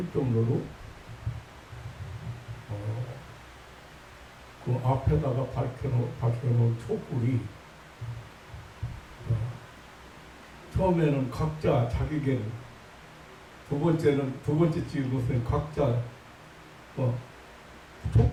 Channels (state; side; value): identical; both; correlation 1.00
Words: 정도로 그 앞에다가 밝혀놓은 촛불이 처음에는 각자 자기계를, 두 번째 찍은 것은 각자